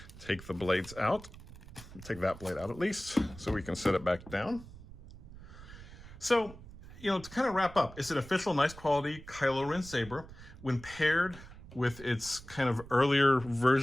take the blades out, take that blade out at least, so we can set it back down. So, to kind of wrap up, it's an official, nice quality Kylo Ren saber. When paired with its kind of earlier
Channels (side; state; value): right; noise; rumble, 16 dB below the sound